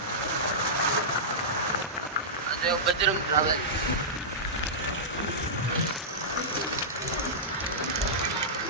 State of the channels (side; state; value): both; normal; correlation -0.14